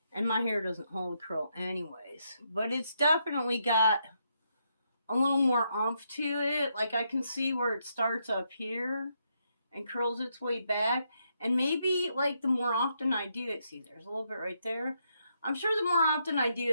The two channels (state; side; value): inverted; both; correlation -0.78